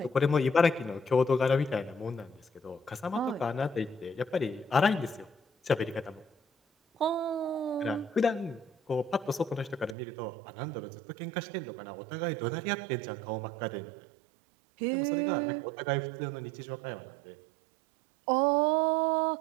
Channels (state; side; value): drops out; left; at 10.0 s